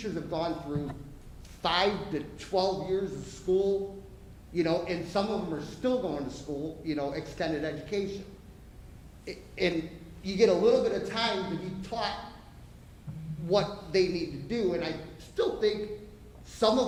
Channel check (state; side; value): identical; both; correlation 1.00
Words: have gone through 5 to 12 years of school, you know, and some of them are still going to school, you know, extended education. And you get a little bit of time to be taught what they need to do, and I still think some of